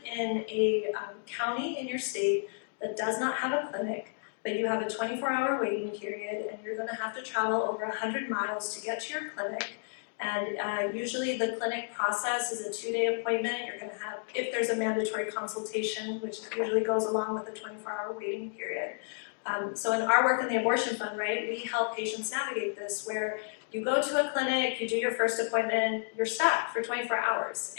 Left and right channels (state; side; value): silent; right; digital silence